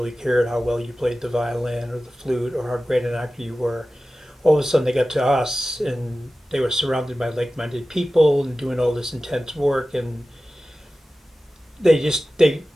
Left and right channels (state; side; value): normal; both; correlation 0.95